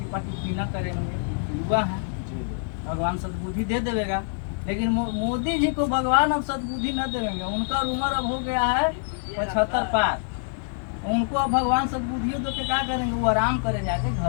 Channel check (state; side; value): silent; right; digital silence